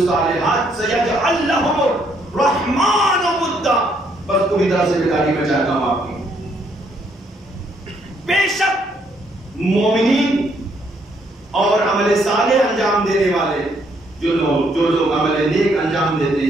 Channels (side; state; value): both; normal; correlation 0.70